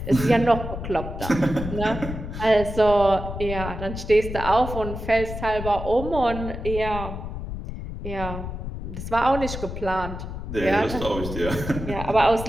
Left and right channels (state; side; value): noise; left; rumble, 7 dB below the sound